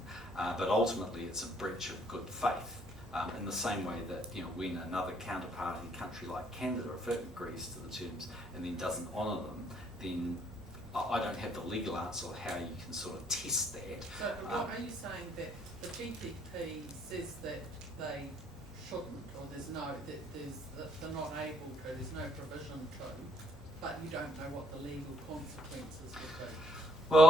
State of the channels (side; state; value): both; normal; correlation 0.67